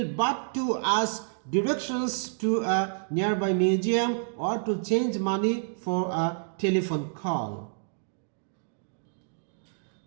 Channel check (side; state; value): left; silent; digital silence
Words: but to ask directions to a nearby museum or to change money for a telephone call.